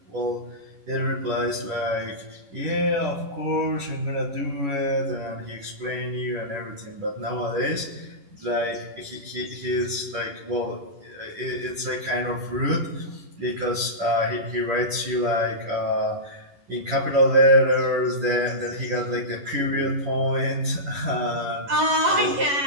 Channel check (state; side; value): late; left; 11 ms